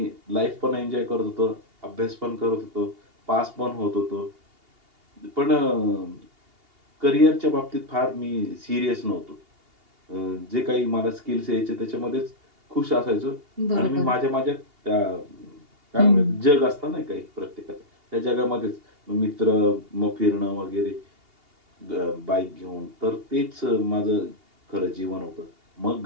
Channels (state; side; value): late; left; 2.8 ms